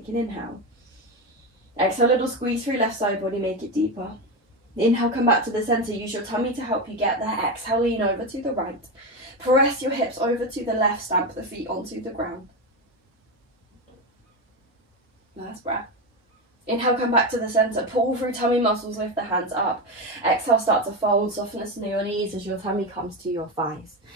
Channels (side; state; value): both; normal; correlation 0.15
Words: an inhale. Exhale, little squeeze through left side body, make it deeper. Inhale, come back to the center. Use your tummy to help you get there. Exhale, lean over to the right. Press your hips over to the left. Stamp the feet onto the ground. Last breath. Inhale, come back to the center. Pull through tummy muscles, lift the hands up. Exhale, start to fold, softness in your knees as your tummy comes to your thighs.